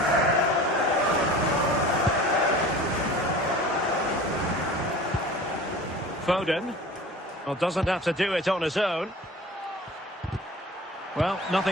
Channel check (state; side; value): normal; both; correlation 0.40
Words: Foden. Well, doesn't have to do it on his own. Well,